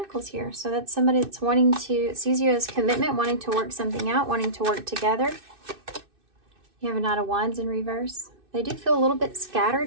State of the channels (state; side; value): late; left; 2.6 ms